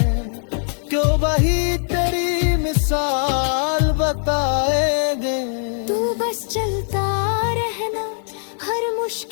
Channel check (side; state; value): right; silent; 65 dB below the other